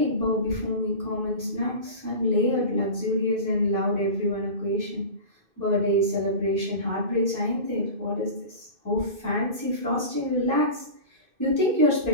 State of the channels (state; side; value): late; left; 2.5 ms